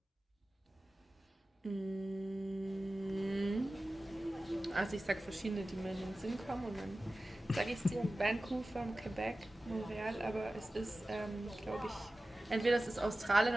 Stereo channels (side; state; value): both; normal; correlation 0.95